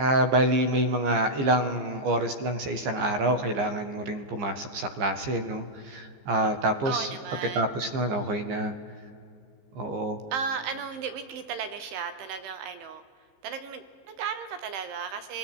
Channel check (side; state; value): left; late; 15 ms